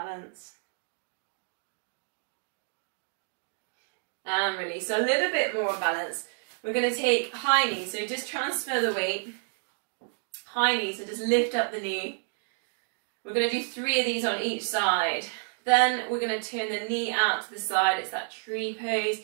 And release. So a little bit more balance. We're going to take high knee. So just transfer the weight. High knee. So just lift up the knee. We're going to do 3 of these on each side. Then we're going to turn the knee out to the side. It's that tree pose,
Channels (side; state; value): left; silent; 58 dB below the other